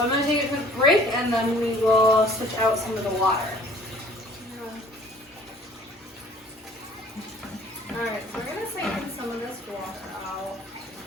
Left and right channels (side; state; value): both; normal; correlation 0.53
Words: I'm going to take a quick break and then we will switch out some of the water. Alright, so we're going to siphon some of this water out.